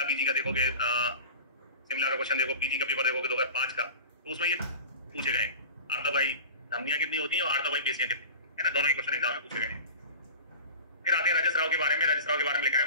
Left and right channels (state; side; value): inverted; both; correlation -0.35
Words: पीजी का देखोगे, शिमला का क्वेश्चन देखो, पीजी का पेपर देखोगे 2005 का, तो उसमें ये पूछे गए आर्तव भाई धमनियां कितनी होती हैं और आर्तव भाई पेशियां कितनी है ना, दोनों ही क्वेश्चन एग्जाम में पूछे गए। फिर आते हैं रजस्राव के बारे में। रजस्राव के बारे में लिखा है